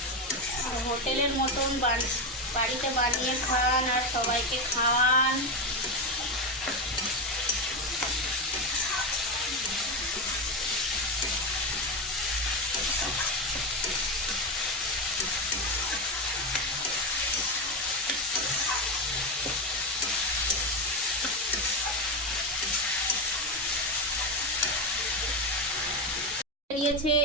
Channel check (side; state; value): both; normal; correlation 0.13